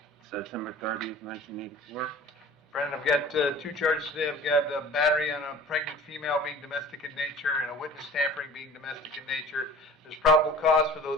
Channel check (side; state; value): both; normal; correlation 0.43